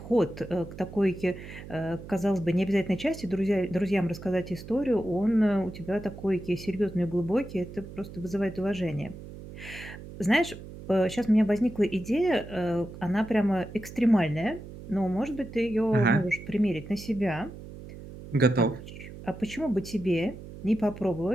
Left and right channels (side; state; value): right; noise; hum, 14 dB below the sound